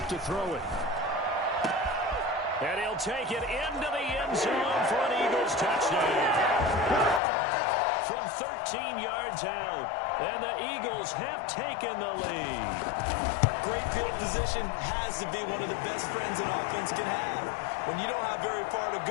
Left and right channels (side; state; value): right; drops out; at 7.2 s